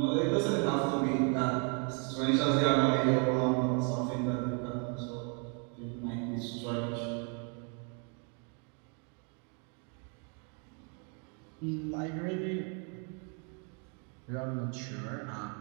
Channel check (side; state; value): left; quieter; 39.0 dB